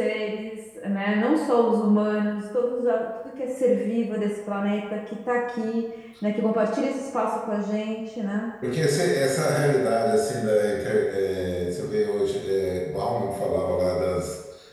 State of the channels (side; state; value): both; identical; correlation 1.00